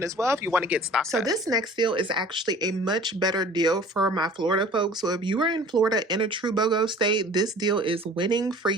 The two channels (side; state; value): both; normal; correlation 0.46